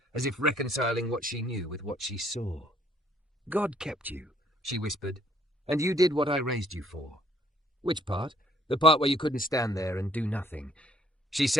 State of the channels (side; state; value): both; normal; correlation 0.65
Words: as if reconciling what she knew with what she saw. "God kept you," she whispered, "and you did what I raised you for." "Which part?" "The part where you couldn't stand there and do nothing." She